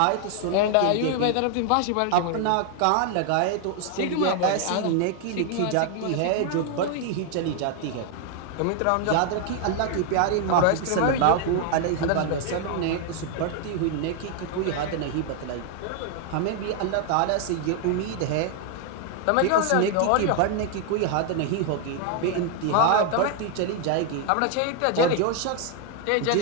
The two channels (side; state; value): both; different; correlation 0.00